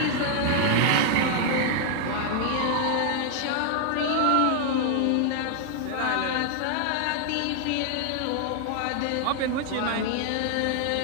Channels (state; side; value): different; both; correlation 0.00